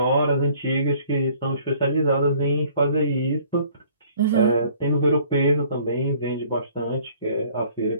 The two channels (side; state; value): both; inverted; correlation -0.57